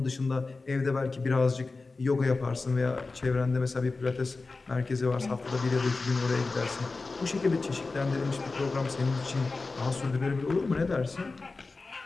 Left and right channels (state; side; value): quieter; right; 3.8 dB